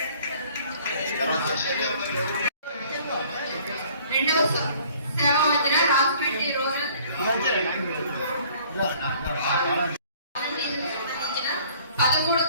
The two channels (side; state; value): both; inverted; correlation -0.55